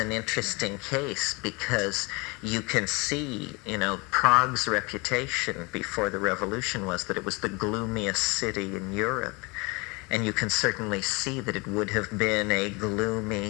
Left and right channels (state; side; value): quieter; right; 27.5 dB